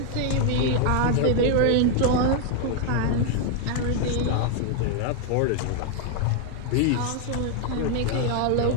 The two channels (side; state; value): both; different; correlation 0.00